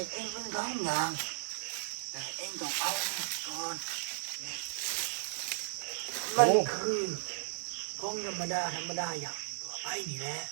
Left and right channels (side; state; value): left; silent; digital silence